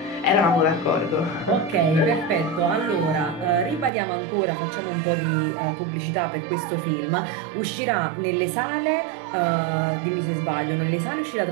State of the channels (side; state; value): left; drops out; at 3.9 s